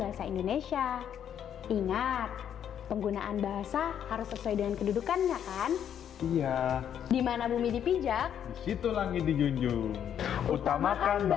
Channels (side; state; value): right; quieter; 9.3 dB